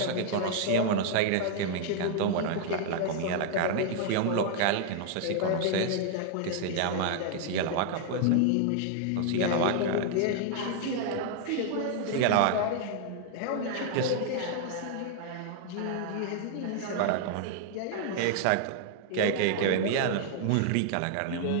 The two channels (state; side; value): different; both; correlation 0.00